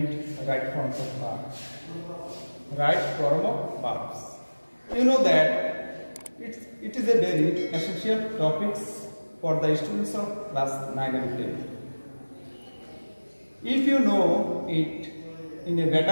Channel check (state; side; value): inverted; both; correlation -1.00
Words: right forms of verbs. Right form of verbs. You know that it is a very essential topic for the students of class 9 and 10. If you know it in a